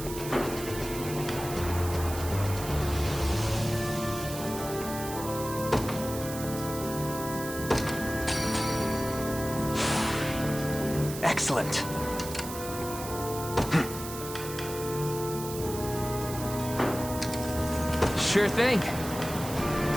Excellent. Sure thing.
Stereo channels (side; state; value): right; noise; hiss, 10 dB below the sound